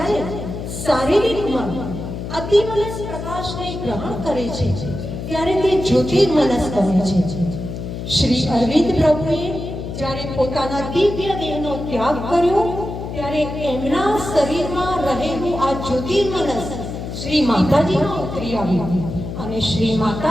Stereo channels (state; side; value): noise; left; hum, 7 dB below the sound